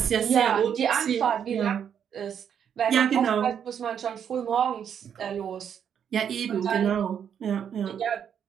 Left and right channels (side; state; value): left; quieter; 8.3 dB